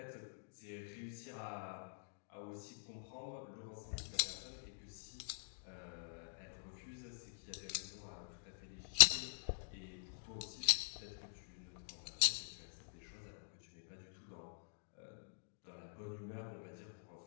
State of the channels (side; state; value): right; silent; digital silence